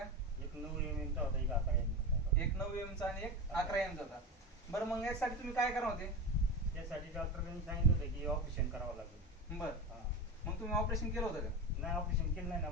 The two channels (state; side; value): normal; both; correlation 0.24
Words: एक 9 mm चा होता, एक 11 mm चा होता. एक 9 एम चा आणि एक 11 एम चा होता. बरं, मग यासाठी तुम्ही काय करणार होते? त्यासाठी डॉक्टरांनी सांगितलं होतं की ऑपरेशन करावं लागेल. बरं, मग तुम्ही ऑपरेशन केलं होतं का? नाही, ऑपरेशन केलं नाही ना.